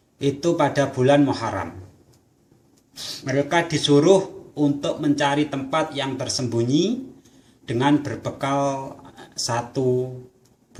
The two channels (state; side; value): identical; both; correlation 1.00